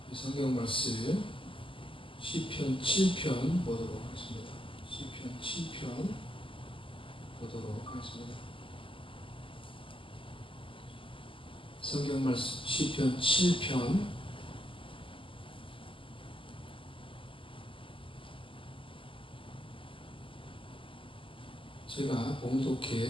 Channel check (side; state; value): right; late; 0.25 ms